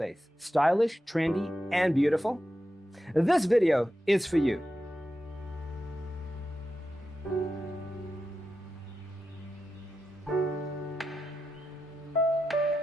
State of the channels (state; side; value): normal; both; correlation 0.89